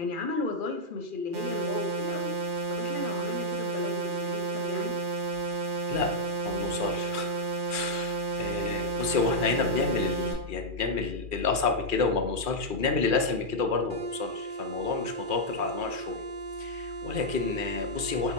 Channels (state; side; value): late; left; 2.4 ms